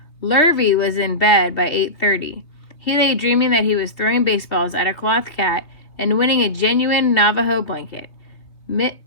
Lurvy was in bed by 8:30. He lay dreaming that he was throwing baseballs at a cloth cat and winning a genuine Navajo blanket.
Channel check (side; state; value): right; late; 2.9 ms